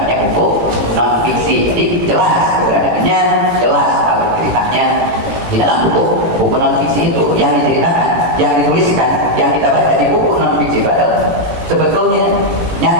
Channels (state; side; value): late; left; 18 ms